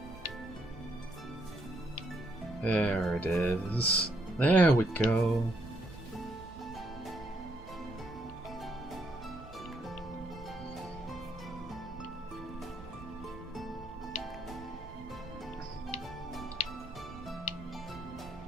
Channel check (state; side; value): noise; right; rumble, 16 dB below the sound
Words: There it is. There we go.